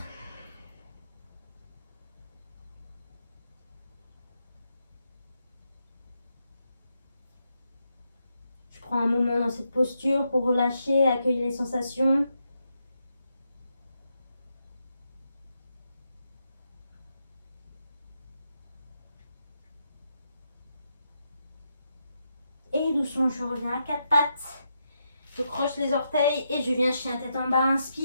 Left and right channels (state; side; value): inverted; both; correlation -0.82